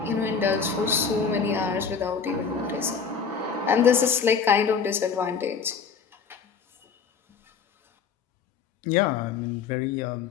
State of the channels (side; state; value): right; quieter; 6.0 dB